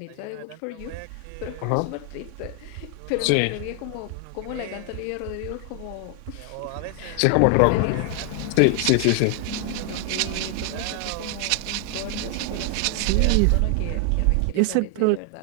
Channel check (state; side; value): different; both; correlation 0.00